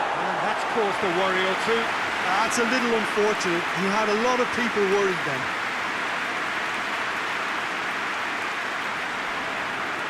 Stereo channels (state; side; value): identical; both; correlation 1.00